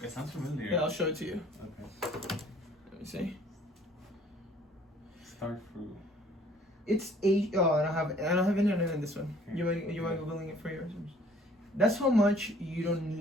It sounds familiar. Yeah, I'll show it to you. Okay. Let me see. Star fruit. It's oh, I don't have internet in this one. You mind googling it for yours? That's how much you don't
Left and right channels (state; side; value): normal; both; correlation 0.56